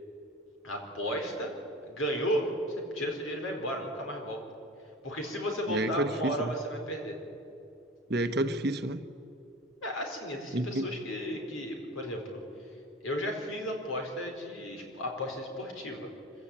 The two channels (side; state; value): both; normal; correlation 0.36